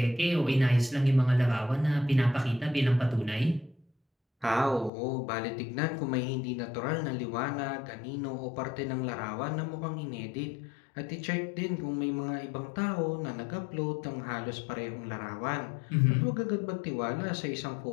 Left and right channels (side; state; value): right; drops out; at 4.9 s